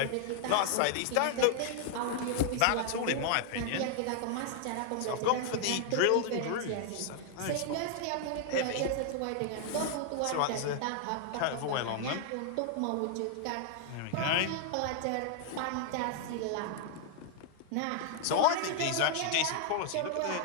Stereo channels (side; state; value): both; different; correlation 0.00